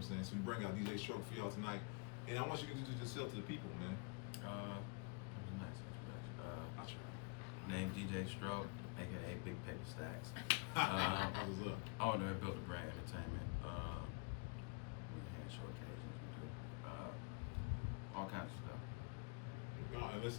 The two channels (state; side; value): quieter; right; 31.6 dB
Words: I'm saying? So we bring out DJ Stroke for y'all tonight. And I want you to introduce yourself to the people, man. That was a nice introduction. I try. Name DJ Stroke, aka Big Paper Stacks. That was up. Owner of Built a Brand Entertainment. We hand show occasions, we do all kinds of stuff. No, and